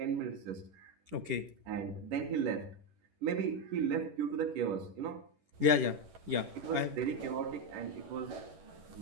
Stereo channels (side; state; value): left; late; 10 ms